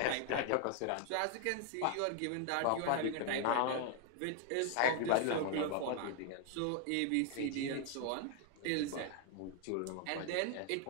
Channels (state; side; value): different; both; correlation 0.00